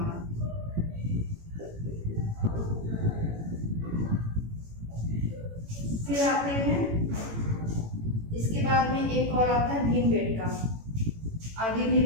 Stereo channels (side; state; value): left; late; 18 ms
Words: फिर आते हैं, इसके बाद में एक और आता है भीमबेटका, आगे भी